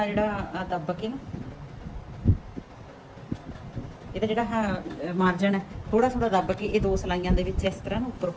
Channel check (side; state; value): both; identical; correlation 1.00